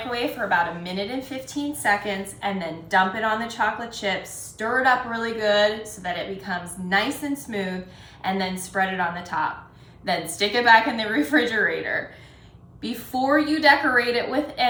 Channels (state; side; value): identical; both; correlation 1.00